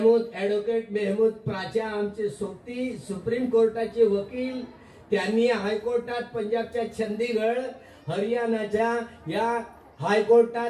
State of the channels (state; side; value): identical; both; correlation 1.00